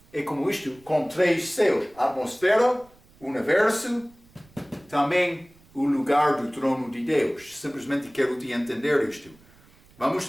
é como isto, com 3 céus. A atmosfera, o universo, também o lugar do trono de Deus. Simplesmente quero te entender isto. Vamos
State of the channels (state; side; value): noise; right; rumble, 28 dB below the sound